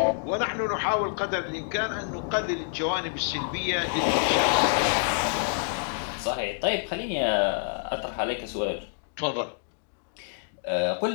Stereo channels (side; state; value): right; silent; digital silence